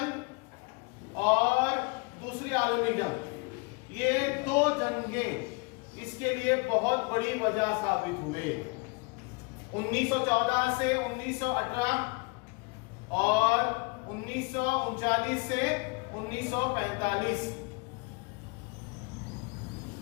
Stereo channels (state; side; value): quieter; right; 31.0 dB